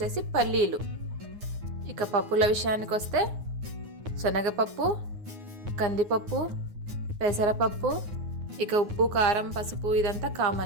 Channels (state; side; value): late; left; 9.6 ms